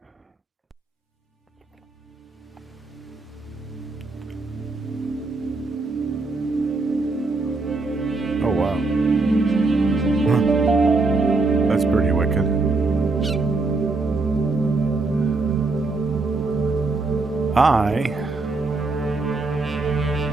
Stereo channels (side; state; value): left; quieter; 3.5 dB